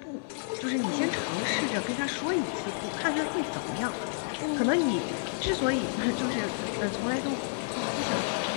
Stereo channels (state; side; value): silent; right; 58 dB below the other